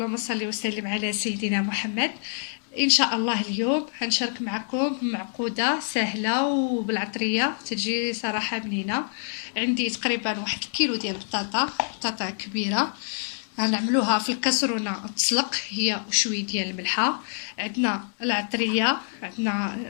صل وسلم على سيدنا محمد. إن شاء الله اليوم هنشارك معكم معقودة سهلة وبالعطرية تجي صراحة بنينة. عندي تقريبا 1 كيلو ديال بطاطا كبيرة، هنعملوها في الكسرونة تسلق هي وشوية ديال الملحة. عندنا العطرية، عندنا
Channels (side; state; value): right; silent; 61 dB below the other